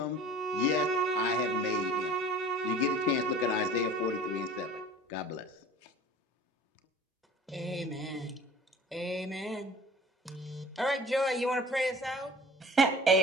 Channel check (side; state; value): both; normal; correlation 0.45